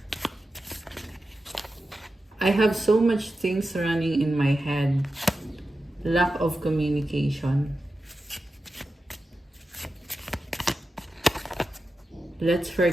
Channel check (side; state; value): both; normal; correlation 0.91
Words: I have so much things running in my head. Lack of communication. Let's